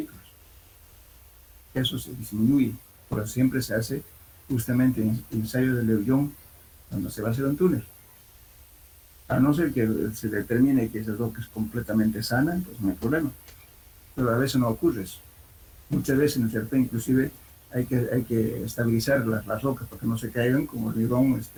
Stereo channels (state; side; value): identical; both; correlation 1.00